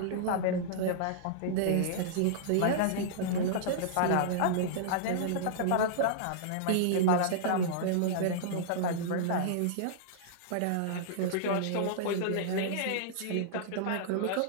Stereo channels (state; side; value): different; both; correlation -0.02